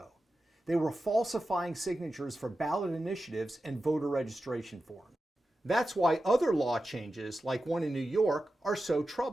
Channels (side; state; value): both; normal; correlation 0.92